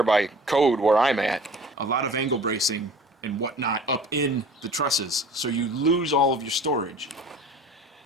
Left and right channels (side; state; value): both; normal; correlation 0.45